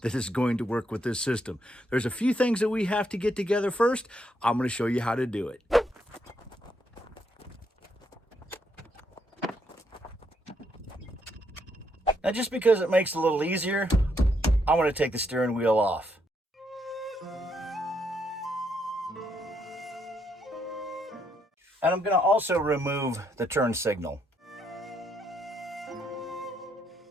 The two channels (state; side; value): normal; both; correlation 0.76